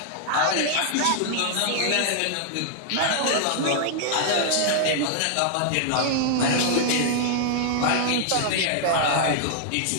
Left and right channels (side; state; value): both; different; correlation -0.01